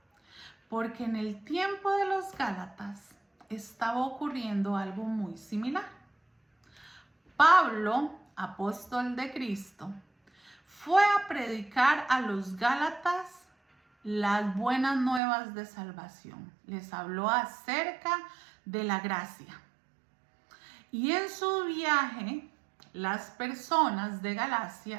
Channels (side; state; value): left; drops out; at 15.2 s